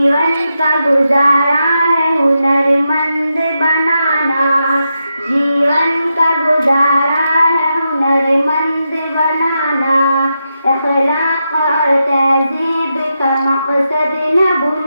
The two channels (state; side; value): inverted; both; correlation -0.86